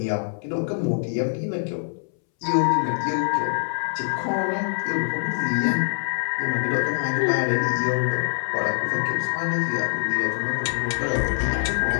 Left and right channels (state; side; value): silent; right; 62 dB below the other